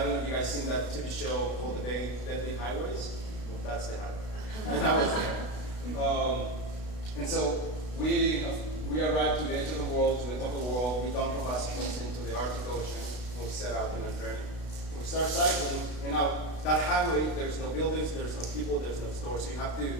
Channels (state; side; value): late; right; 32 ms